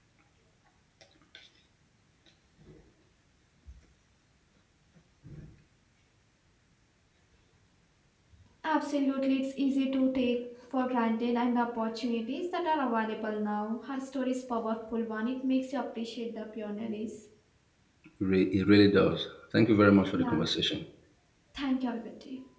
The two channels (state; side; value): identical; both; correlation 1.00